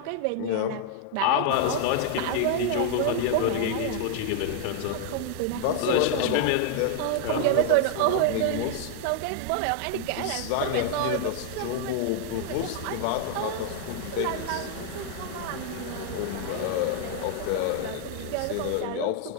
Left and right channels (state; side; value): different; both; correlation 0.00